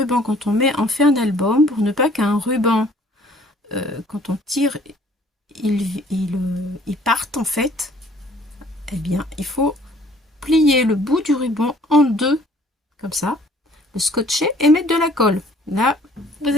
quand on fait un album, pour ne pas qu'un ruban, quand on tire, il parte en fait, eh bien, il faut plier le bout du ruban en deux, comme ça, le scotcher et mettre de la colle. Là, vous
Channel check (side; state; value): both; normal; correlation 0.56